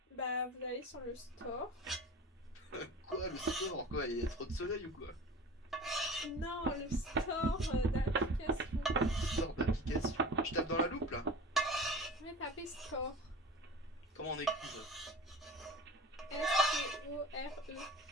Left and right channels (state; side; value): normal; both; correlation 0.38